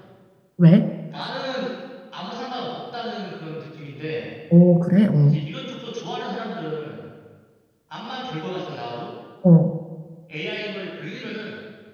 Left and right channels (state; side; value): identical; both; correlation 1.00